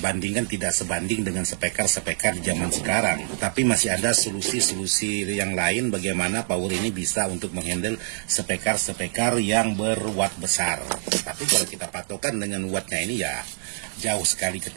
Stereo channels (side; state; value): left; silent; digital silence